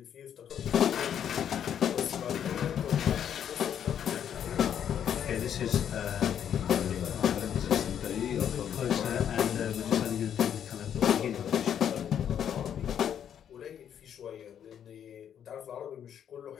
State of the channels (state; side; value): quieter; right; 9.1 dB